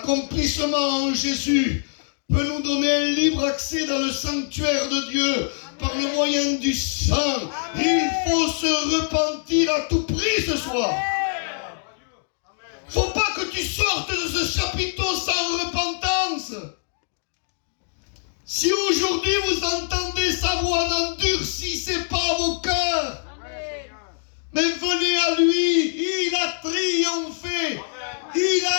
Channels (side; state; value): right; silent; digital silence